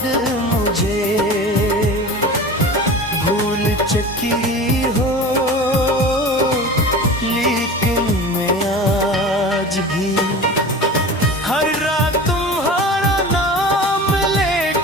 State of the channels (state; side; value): normal; both; correlation 0.35